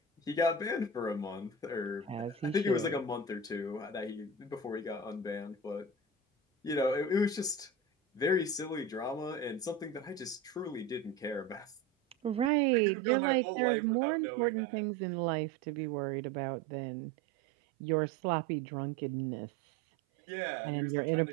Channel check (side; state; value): left; drops out; at 12.5 s